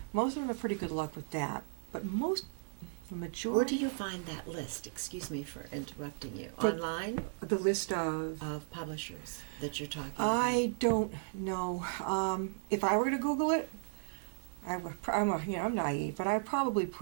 Most of them have pretty good luck with that. But the majority. Where do you find that list? Excuse me for interrupting you. But- Online The list of. of publishers that you're talking I don't know. If I were to Google it, I'm naive, but I'd probably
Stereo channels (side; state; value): left; silent; digital silence